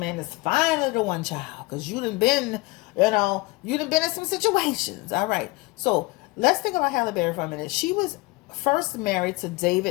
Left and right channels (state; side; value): quieter; right; 23.3 dB